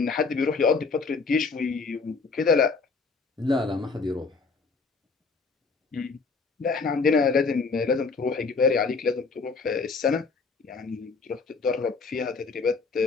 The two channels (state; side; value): quieter; right; 4.5 dB